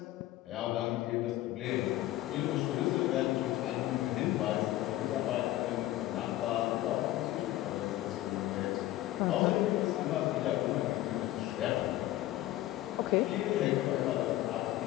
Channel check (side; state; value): right; quieter; 15.5 dB